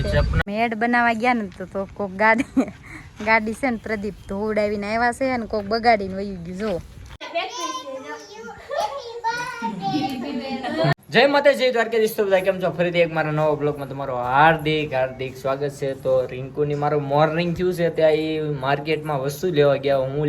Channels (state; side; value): identical; both; correlation 1.00